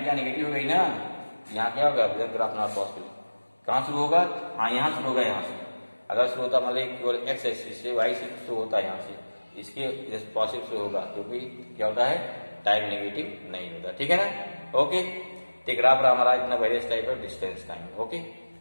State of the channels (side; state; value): both; inverted; correlation -1.00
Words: क्या नेगेटिव हो गई ना, यहाँ क्या होगा ग्राफ नॉट पॉसिबल। कहाँ शुरू होगा, हाँ यहाँ शुरू होगा, यहाँ से अगर शुरू होता मान ली केवल एक्स एक्सिस से, वाई से शुरू होता है यहाँ से, इसके पॉसिबल शुरू होगा, क्योंकि क्या होता है टाइम नेगेटिव नहीं होता, ठीक है ना। ओके, तो ग्राफ हमारा इतना various type of distance time. Okay,